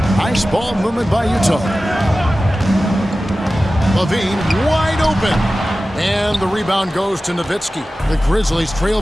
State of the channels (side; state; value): both; normal; correlation 0.95